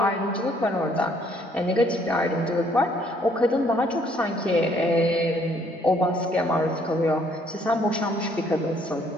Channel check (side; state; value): both; normal; correlation 0.65